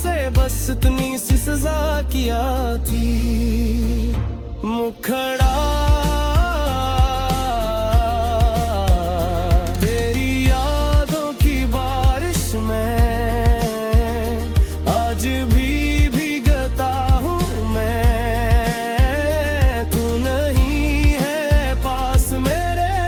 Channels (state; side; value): identical; both; correlation 1.00